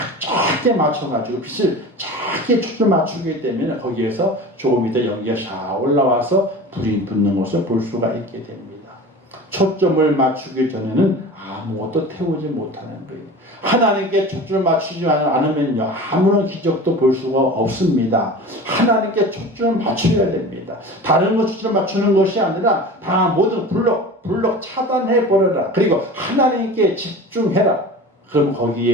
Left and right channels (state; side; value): normal; both; correlation 0.35